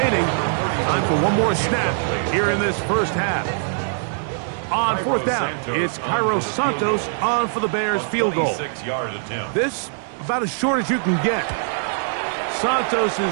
Time for one more snap here in this first half. On 4th down, it's Cairo Santos on for the Bears field goal. This about as short as you can get. Santos'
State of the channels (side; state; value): left; silent; digital silence